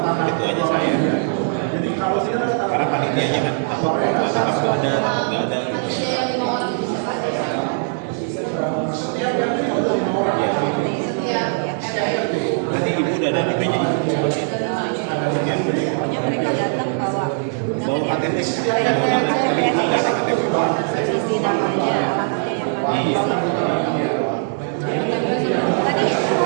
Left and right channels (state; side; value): silent; left; 65 dB below the other